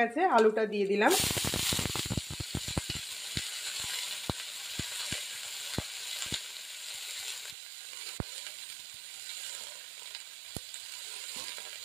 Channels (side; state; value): left; drops out; at 7.6 s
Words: আলুটা দিয়ে দিলাম।